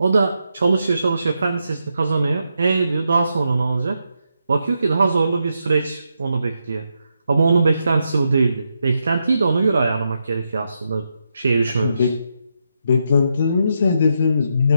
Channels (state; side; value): inverted; both; correlation -0.83